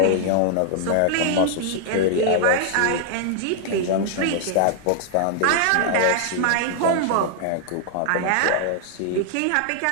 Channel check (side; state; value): both; different; correlation 0.00